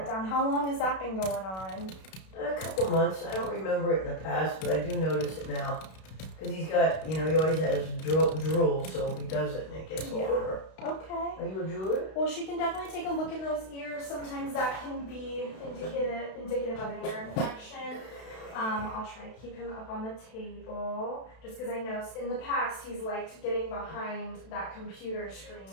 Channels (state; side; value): late; right; 32 ms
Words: down. How long has that been going on? A couple months. I don't remember it in the past, but I do notice it now. Because he's got, he always has drool, so he does it and it gets all over. Okay. Are you a drooler? Well, she can definitely take a look in those ears. Sometimes that can be indicative of an ear infection. I'll try to keep him up on the table, just because I know in the past he's liked getting behind that computer screen.